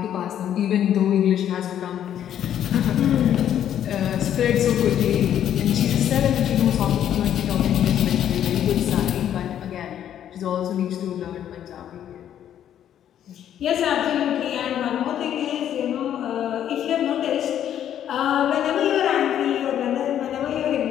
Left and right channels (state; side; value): quieter; right; 10.4 dB